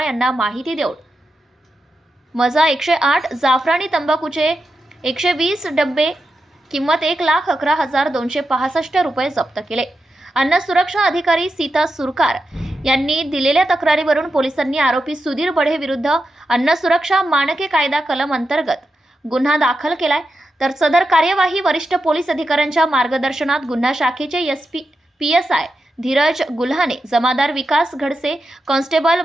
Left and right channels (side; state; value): both; normal; correlation 0.88